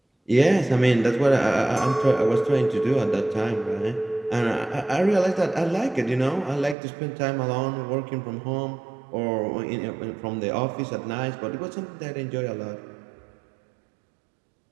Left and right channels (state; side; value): drops out; left; at 6.8 s